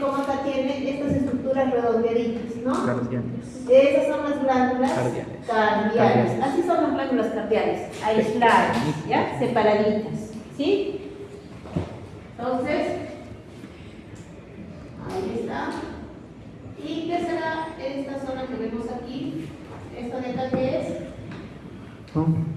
cómo acá tiene estas estructuras redondeaditas, ¿no? Cardiales. Esas son las glándulas Cardiales. cardiales. Así son las glándulas cardiales, aisladas, ¿ya? Separaditas, ¿sí? Entonces, ahí está. ¿Y qué será esta zona que vemos aquí? ¿Esta de acá qué es?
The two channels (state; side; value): identical; both; correlation 1.00